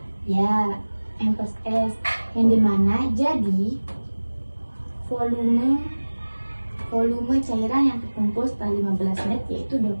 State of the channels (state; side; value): inverted; both; correlation -1.00